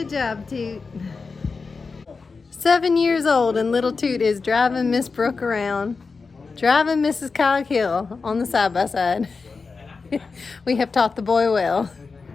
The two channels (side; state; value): right; quieter; 4.5 dB